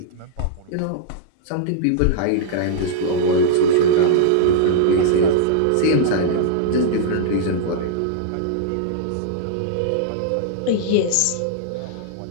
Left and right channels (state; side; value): different; both; correlation -0.02